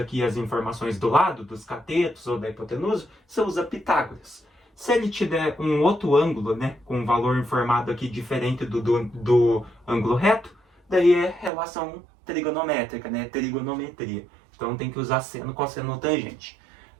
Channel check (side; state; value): left; drops out; at 11.5 s